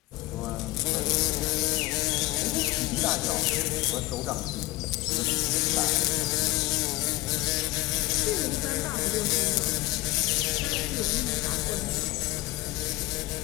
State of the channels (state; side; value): quieter; right; 19.7 dB